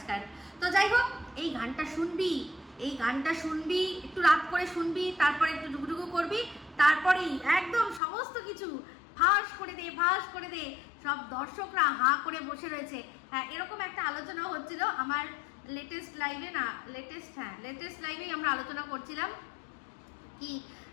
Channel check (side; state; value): right; drops out; at 8.0 s